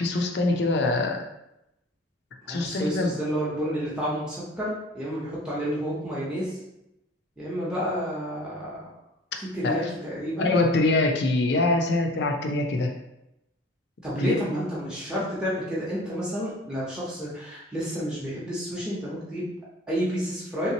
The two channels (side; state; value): both; normal; correlation 0.45